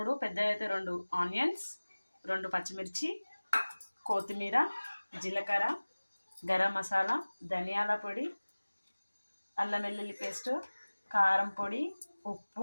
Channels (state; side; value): inverted; both; correlation -1.00